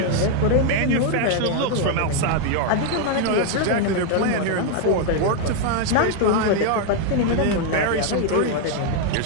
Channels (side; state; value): both; different; correlation 0.00